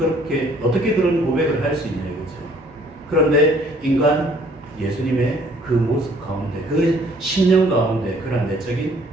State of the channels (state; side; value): normal; both; correlation 0.59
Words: 그런 고백을 할 수 있나요? 그죠? 그런데 인간 예수님의 그 모습 가운데, 그 심령 가운데 그런 내적인